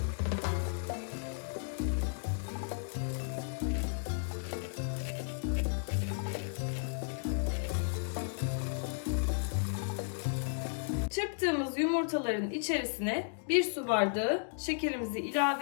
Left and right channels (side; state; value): right; silent; digital silence